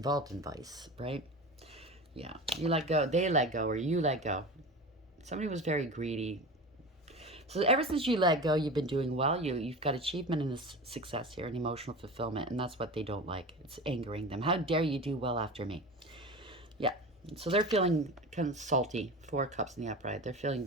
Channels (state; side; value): normal; both; correlation 0.30